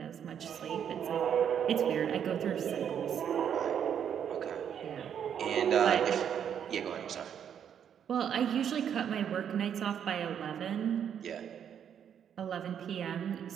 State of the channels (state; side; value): quieter; left; 8.6 dB